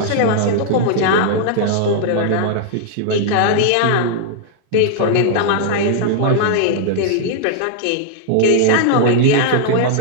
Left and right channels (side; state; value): both; different; correlation -0.01